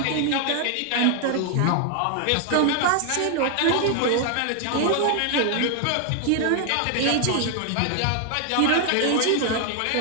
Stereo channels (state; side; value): different; both; correlation 0.00